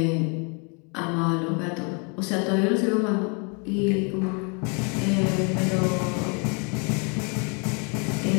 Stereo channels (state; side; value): quieter; right; 34.9 dB